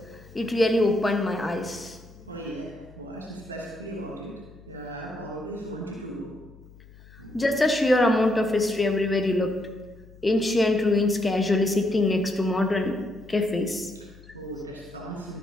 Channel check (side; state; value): left; noise; hum, 22 dB below the sound